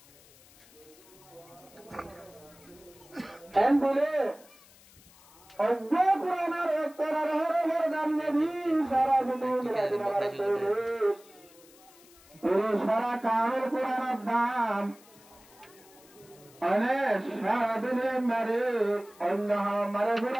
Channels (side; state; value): left; noise; hiss, 25 dB below the sound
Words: এন বলে অজ্ঞ পুরাণের অক্ষরের হরের দাম যদি সারা পৃথিবী সারা কামের পুরাণের দাম অনেক সারা দিনে মারে অন্য মারে